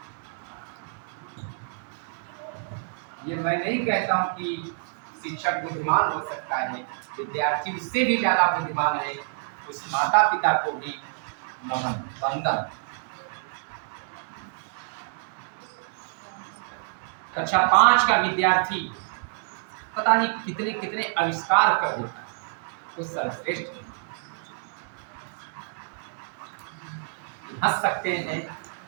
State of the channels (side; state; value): left; silent; digital silence